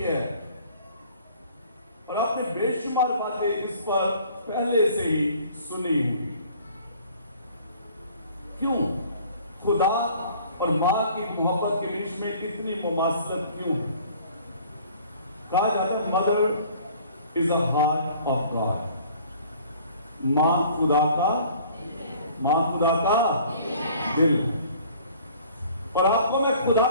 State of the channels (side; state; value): both; inverted; correlation -0.52